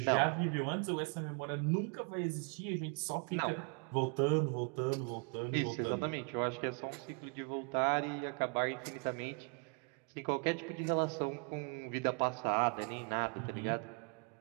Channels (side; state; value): left; quieter; 39.2 dB